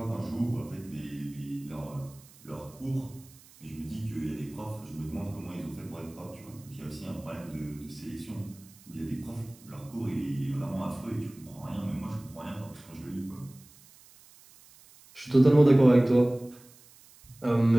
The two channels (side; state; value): right; noise; hiss, 24 dB below the sound